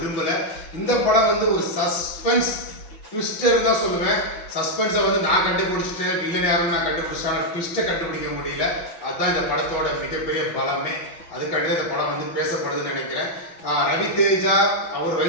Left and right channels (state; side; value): late; right; 6.0 ms